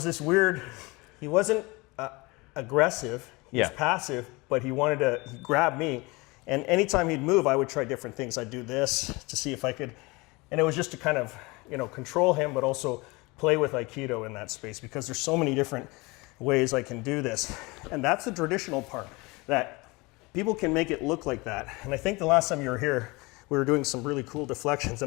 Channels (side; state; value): right; quieter; 24.8 dB